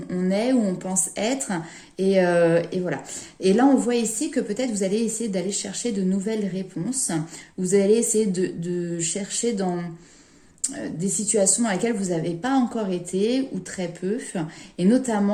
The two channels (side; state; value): both; identical; correlation 1.00